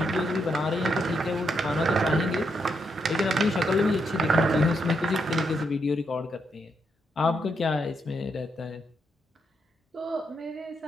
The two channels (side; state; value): both; normal; correlation 0.79